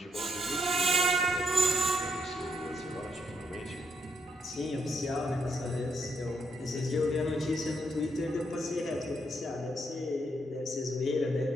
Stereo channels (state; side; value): normal; both; correlation 0.77